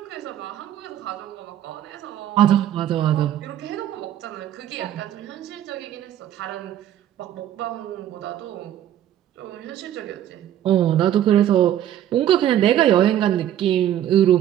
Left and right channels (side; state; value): left; quieter; 11.4 dB